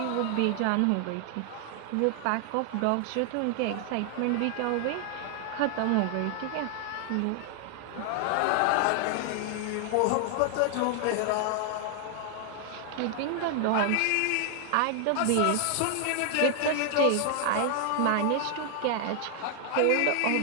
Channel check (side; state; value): both; different; correlation 0.00